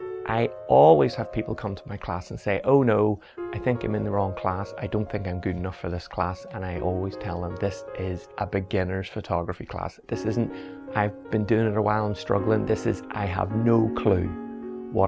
I always have people come to my class and say, oh no, I think I'm in the wrong class. I don't think I'm good enough for this class. And I always tell them this is a beginner's photography class. This isn't, I've been doing it a while, I'm struggling. This is, I have no clue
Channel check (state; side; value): identical; both; correlation 1.00